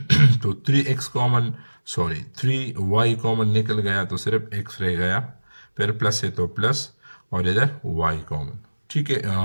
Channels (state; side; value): inverted; both; correlation -1.00